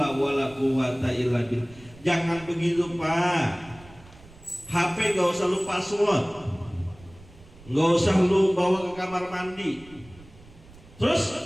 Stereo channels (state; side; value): noise; right; rumble, 22 dB below the sound